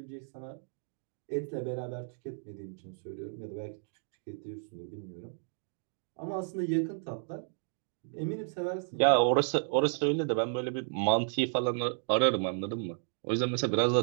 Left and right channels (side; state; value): left; silent; digital silence